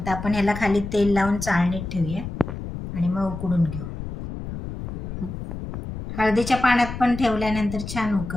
आपण ह्याला खाली तेल लावून चाळणीत ठेवूया आणि मग उकडून घेऊ. हळदीच्या पाण्यात पण ठेवल्यानंतर छान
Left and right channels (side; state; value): left; noise; rumble, 8 dB below the sound